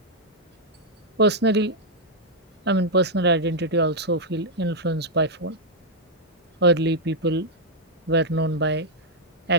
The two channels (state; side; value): normal; both; correlation -0.04